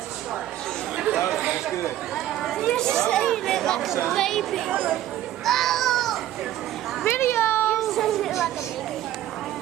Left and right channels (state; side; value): quieter; left; 13.2 dB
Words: Logan, that's good. You're saying it like a baby. Oh! Video! You're saying it like a baby.